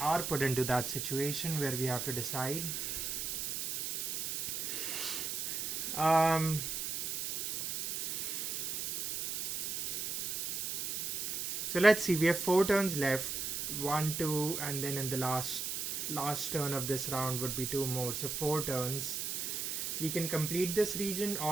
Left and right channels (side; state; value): right; noise; hiss, 2 dB below the sound